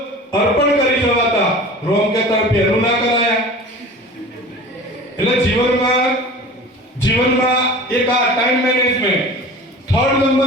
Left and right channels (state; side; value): normal; both; correlation 0.39